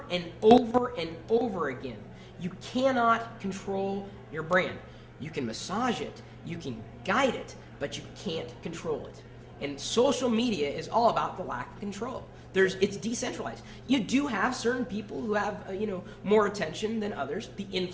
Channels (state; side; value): identical; both; correlation 1.00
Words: and over and over again. You cannot control your brand. You can massage it, you can guide it, but you can't control it. And social media is all about the lack of control. It's decentralized. You do have certain people who have more attention than others, the